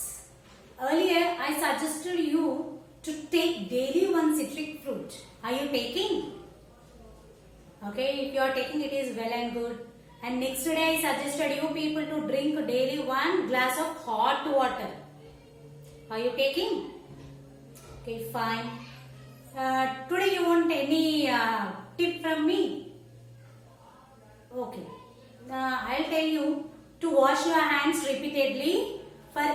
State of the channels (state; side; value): identical; both; correlation 1.00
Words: earlier I suggested you to take daily one citric fruit. Are you taking? Okay, if you are taking, it is well and good. And next day I suggested you people to drink daily one glass of hot water. Are you taking? Okay, fine. Today you want any tip from me? Okay. I'll tell you to wash your hands repeatedly for